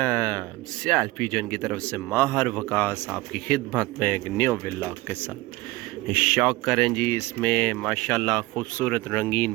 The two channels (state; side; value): quieter; left; 20.4 dB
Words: सियाल पिजन की तरफ से माहर वकास आपकी खिदमत में एक न्यू व्लॉग के साथ शौक करें जी। इसमें माशाल्लाह खूबसूरत